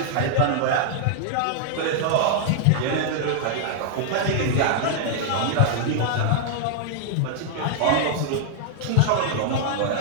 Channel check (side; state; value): both; different; correlation 0.00